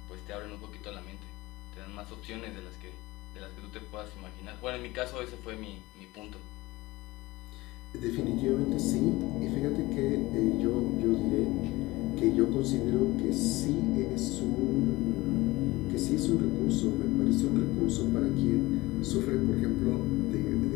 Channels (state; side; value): quieter; right; 20.2 dB